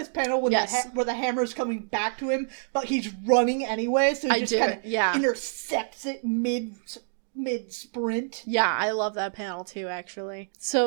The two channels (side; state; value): left; silent; digital silence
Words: panel when where the hammer's coming back to him, but he's running anyway, so he just kind of intercepts it mid-sprint. Yeah, I love that panel too, actually.